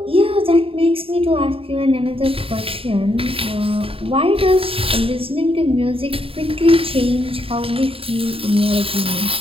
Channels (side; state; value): left; late; 0.27 ms